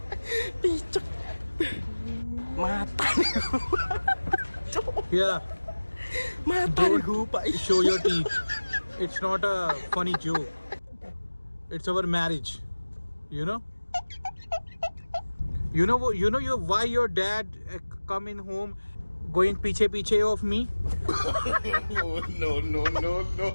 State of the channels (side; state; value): both; inverted; correlation -1.00